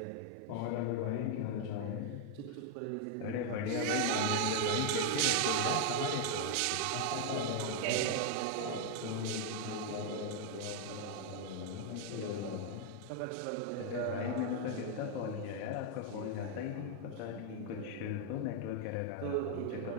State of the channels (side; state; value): both; different; correlation 0.00